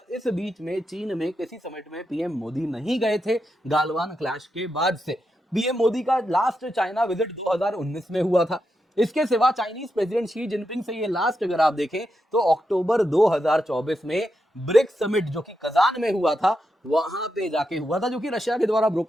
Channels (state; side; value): normal; both; correlation 0.86